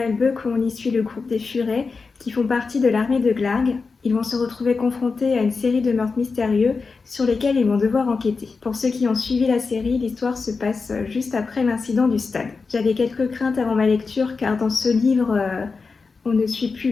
où on y suit le groupe des Furets qui font partie de l'armée de Glarg. Ils vont se retrouver confrontés à une série de meurtres mystérieux sur lesquels ils vont devoir enquêter. Pour ceux qui ont suivi la série, l'histoire se passe juste après l'incident du stade. J'avais quelques craintes avant ma lecture car dans ce livre, on ne suit plus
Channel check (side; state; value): right; quieter; 4.5 dB